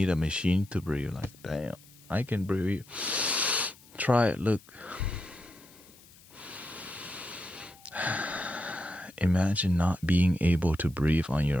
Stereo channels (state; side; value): noise; left; hiss, 24 dB below the sound